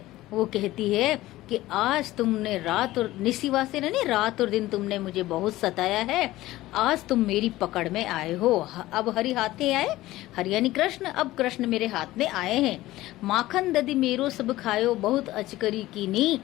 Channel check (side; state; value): right; quieter; 16.7 dB